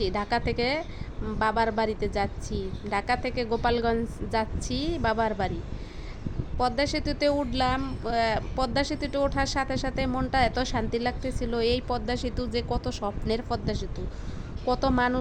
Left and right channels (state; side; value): identical; both; correlation 1.00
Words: ঢাকা থেকে বাবার বাড়িতে যাচ্ছি, ঢাকা থেকে গোপালগঞ্জ যাচ্ছি বাবার বাড়ি। পদ্মা সেতুতে উঠলাম, পদ্মা সেতুতে ওঠার সাথে সাথে মনটা এত শান্তি লাগতেছিল। এই পদ্মা সেতু যে কত স্বপ্নের পদ্মা সেতু, কত